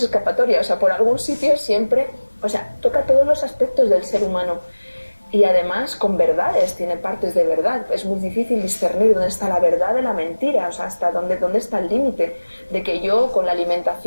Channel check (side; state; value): both; inverted; correlation -1.00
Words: escapatoria, o sea, por algún sitio siempre, o sea, toca todos los aspectos del ser humano y además con verdades, tiene partes de verdad. Es muy difícil discernir dónde está la verdad de la mentira, o sea, hasta dónde está el límite de que yo con la